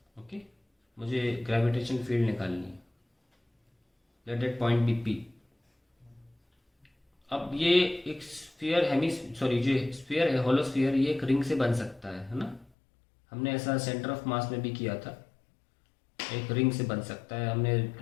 ओके, मुझे ग्रेविटेशन फील्ड निकालनी है. Let that point be P. अब ये एक स्फीयर जो स्फीयर है हॉलो स्फीयर, ये एक रिंग से बन सकता है ना. हमने ऐसा सेंटर ऑफ मास में भी किया था. एक रिंग से बन सकता है. हमने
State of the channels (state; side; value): drops out; right; at 12.7 s